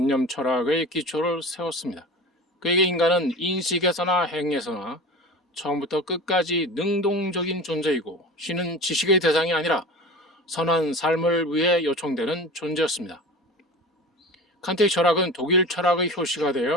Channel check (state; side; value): normal; both; correlation 0.34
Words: 철학의 기초를 세웠습니다. 그에게 인간은 인식에서나 행에서나 처음부터 끝까지 능동적인 존재이고 신은 지식의 대상이 아니라 선한 삶을 위해 요청되는 존재였습니다. 칸트의 철학은 독일 철학의 효시가